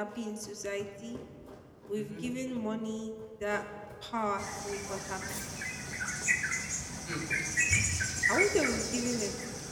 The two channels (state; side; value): identical; both; correlation 1.00